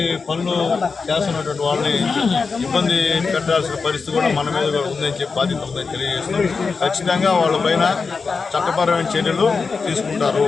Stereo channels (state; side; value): quieter; right; 4.8 dB